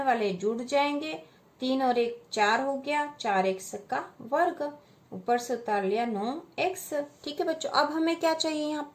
वाले जुड़ जाएंगे। 3 और 1 4 हो गया, 4x का वर्ग, ऊपर से उतार लिया 9x। ठीक है बच्चों, अब हमें क्या चाहिए यहाँ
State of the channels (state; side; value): identical; both; correlation 1.00